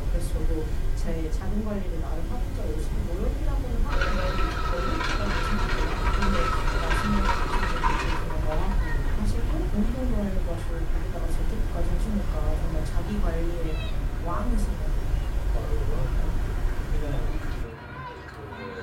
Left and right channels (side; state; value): both; identical; correlation 1.00